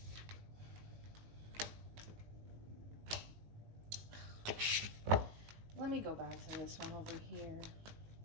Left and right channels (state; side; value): late; left; 18 ms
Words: Let me go back to this one over here.